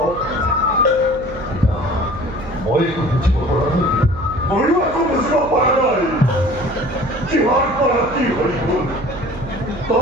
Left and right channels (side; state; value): right; noise; hum, 13 dB below the sound